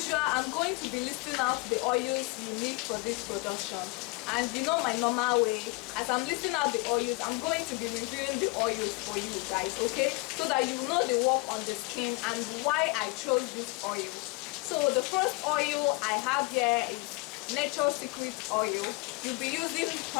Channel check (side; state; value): right; quieter; 25.3 dB